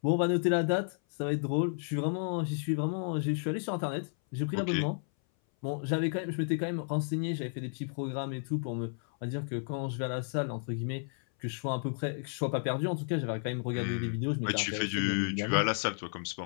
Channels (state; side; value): silent; right; 56 dB below the other